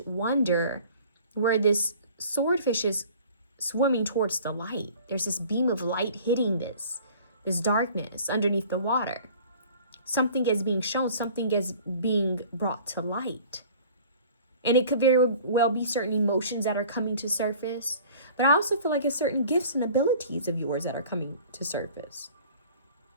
wonder where this swordfish is swimming towards the light. There's this beam of light hitting this darkness underneath the water. Something is being shown, something is being brought to light. And it could very well be certain emotions that are coming to surface. But I also feel like it's certain gifts and abilities of yours that are coming to surface.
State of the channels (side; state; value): both; inverted; correlation -0.47